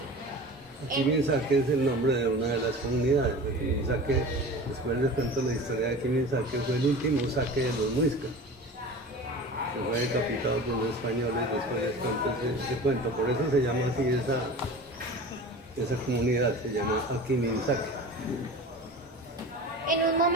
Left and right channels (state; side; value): normal; both; correlation 0.36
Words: Akimisake es el nombre de una de las comunidades. Akimisake, después les cuento la historia de Akimisake, fue el último saque de los muiscas, que fue decapitado por los españoles. Después les cuento ese cuento, por eso se llama así esa comunidad, se llama Akimisake. En un